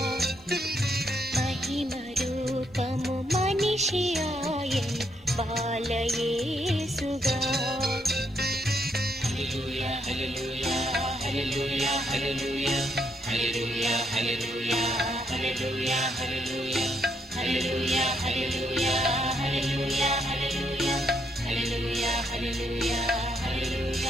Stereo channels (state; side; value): normal; both; correlation 0.75